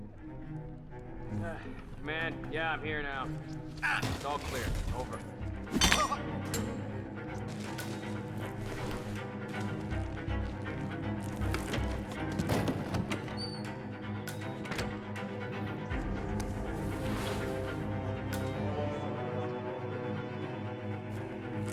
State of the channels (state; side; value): identical; both; correlation 1.00